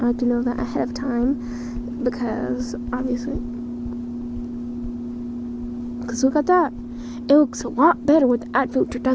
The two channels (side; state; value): both; identical; correlation 1.00